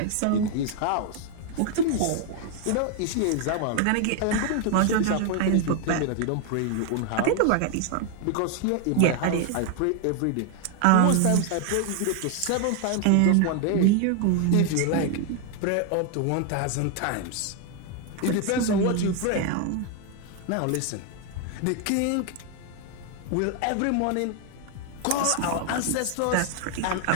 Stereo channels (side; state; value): both; different; correlation 0.01